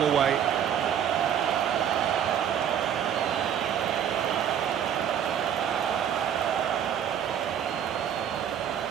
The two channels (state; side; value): quieter; left; 9.2 dB